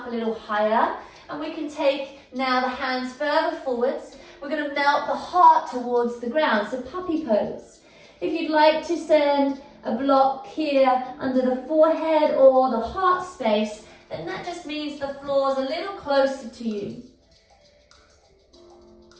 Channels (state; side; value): identical; both; correlation 1.00